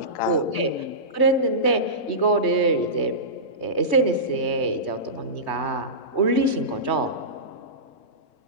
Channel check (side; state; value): right; late; 3.2 ms